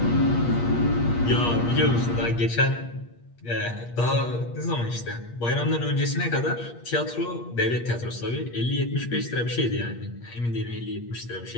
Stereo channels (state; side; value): late; right; 8.5 ms